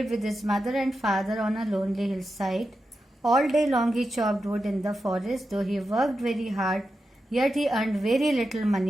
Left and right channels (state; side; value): normal; both; correlation 0.89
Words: with his mother and father on a lonely hillside. All day long he chopped wood in the forest. Though he worked very hard, yet he earned very little